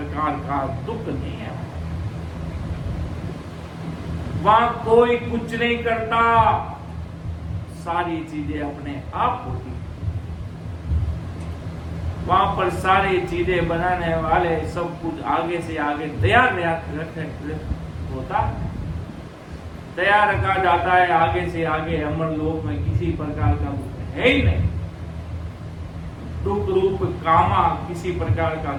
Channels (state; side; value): identical; both; correlation 1.00